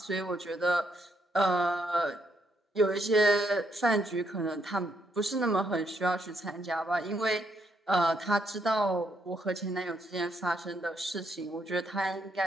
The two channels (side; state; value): both; normal; correlation 0.75